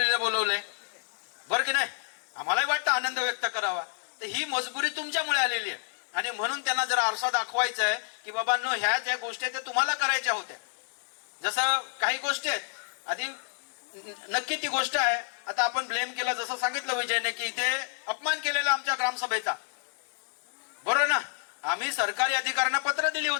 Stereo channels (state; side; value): silent; right; digital silence